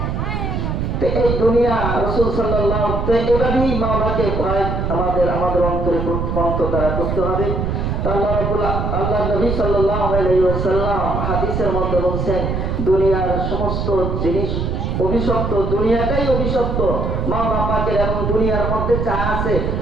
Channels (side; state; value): right; noise; rumble, 1 dB below the sound